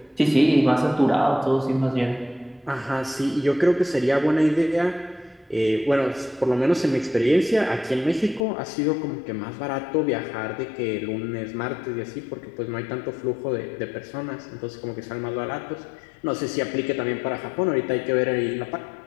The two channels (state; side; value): drops out; right; at 8.5 s